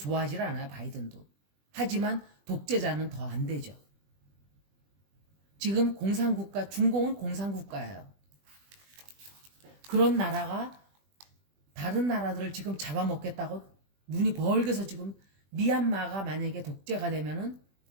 않아요, 바이든도. 하지만 독재자는 더 안 되죠. 지금 공산국가, 중공은 공산국가예요. 그런 나라가 다른 나라들을 지금 잡아먹겠다고 눈이 벌게서 지금 미얀마가 만약에 독재가 되면은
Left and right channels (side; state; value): left; late; 20 ms